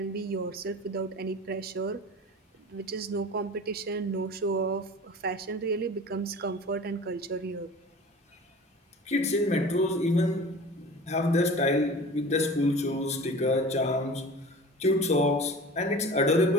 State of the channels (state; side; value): normal; both; correlation 0.38